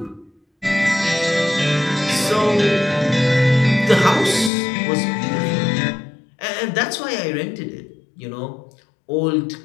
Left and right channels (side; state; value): right; drops out; at 4.5 s